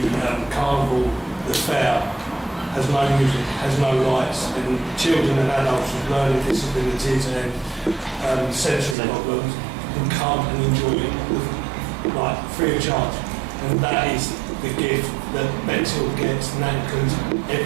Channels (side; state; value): left; drops out; at 9.0 s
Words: carnival, the fair, has no music, has no lights, and children and adults with learning disabilities and sensory problems can come and enjoy it like free of charge. And that is the gift that Bexhill gets, and that includes